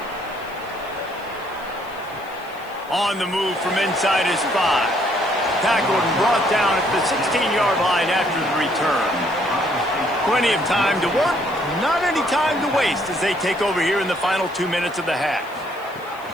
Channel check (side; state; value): left; noise; hiss, 26 dB below the sound